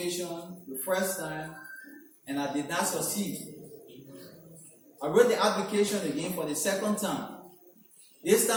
the first time and I did not succeed. I wrote the application again for the second time This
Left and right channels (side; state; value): both; identical; correlation 1.00